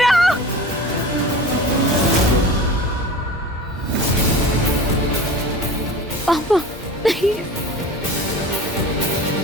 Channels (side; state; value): both; normal; correlation 0.36